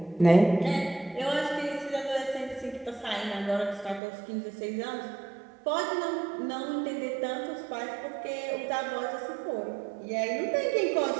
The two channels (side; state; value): left; drops out; at 4.0 s